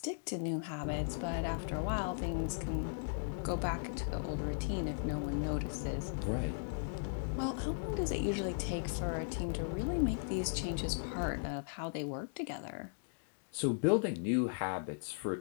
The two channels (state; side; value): silent; right; digital silence